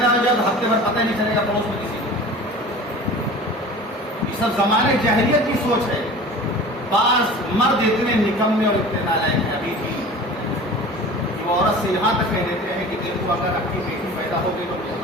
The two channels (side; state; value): both; normal; correlation 0.39